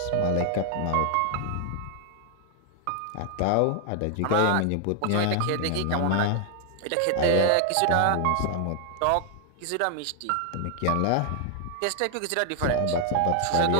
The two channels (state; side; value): different; both; correlation 0.00